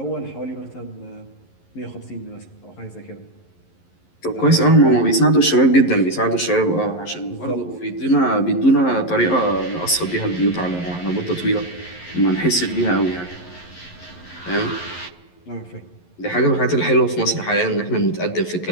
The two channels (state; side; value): late; right; 11 ms